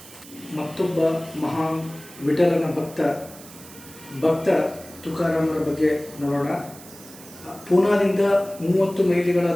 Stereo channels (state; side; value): noise; right; hiss, 18 dB below the sound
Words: ಮತ್ತೊಬ್ಬ ಮಹಾನ್ ವಿಠಲನ ಭಕ್ತ ತುಕಾರಾಮರ ಬಗ್ಗೆ ನೋಡೋಣ. ಪೂನಾದಿಂದ 30 ಮೈಲಿಗಳ